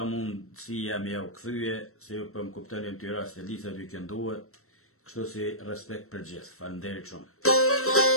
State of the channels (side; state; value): right; late; 0.63 ms